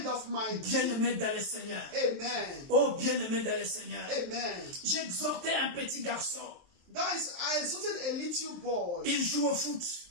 of my Bien-aimé dans le Seigneur. Amen. Oh, bien-aimé dans le Seigneur. Amen. J'exhortais un petit garçon. That is, I exalted a little boy. Il joue au foot.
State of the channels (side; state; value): left; late; 23 ms